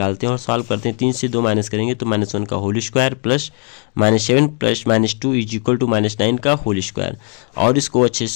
हैं और सॉल्व करते हैं। 3 से 2 माइनस करेंगे तो -1 का होल स्क्वायर प्लस -7 प्लस -2 = -9 का होल स्क्वायर। और इसको अच्छे से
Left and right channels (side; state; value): right; quieter; 39.3 dB